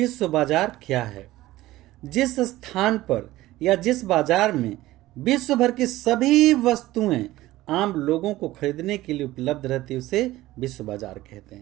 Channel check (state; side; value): quieter; left; 16.7 dB